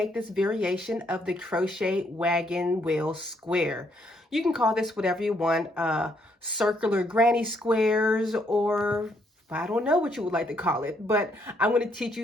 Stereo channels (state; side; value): normal; both; correlation 0.72